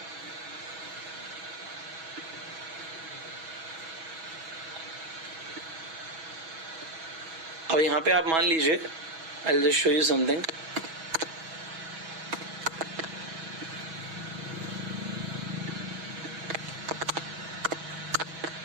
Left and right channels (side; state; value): left; late; 6.2 ms